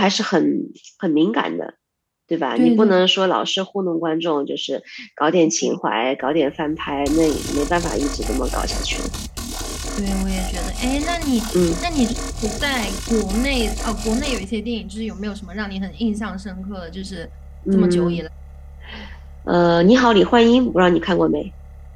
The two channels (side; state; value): both; identical; correlation 1.00